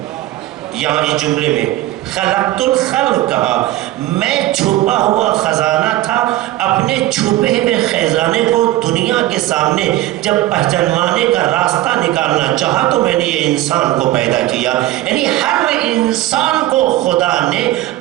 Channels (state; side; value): quieter; left; 15.6 dB